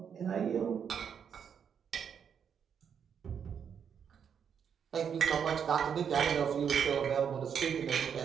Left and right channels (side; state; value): left; quieter; 7.6 dB